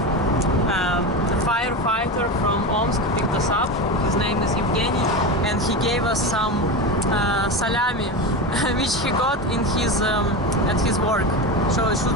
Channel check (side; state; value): both; normal; correlation 0.21